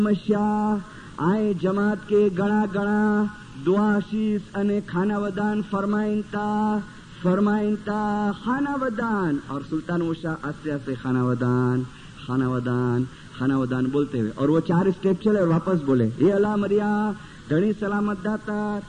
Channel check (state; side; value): identical; both; correlation 1.00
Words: शाह आए जमात के गणा गणा दुआ शीश अने खाना वदान फरमाइनता खाना वदान। और सुल्तान शाह आस्ते आस्ते खाना वदान बोलते हुए, और वो 4 स्टेप चले और वापस बोले ये अला मरिया धनी सलामत दातार